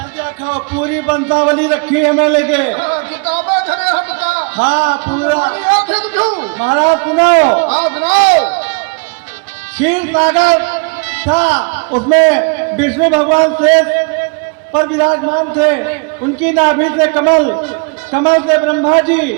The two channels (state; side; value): quieter; left; 35.2 dB